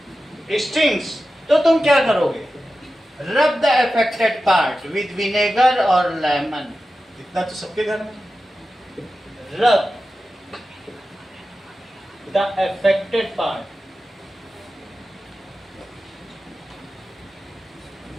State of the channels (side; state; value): both; normal; correlation 0.93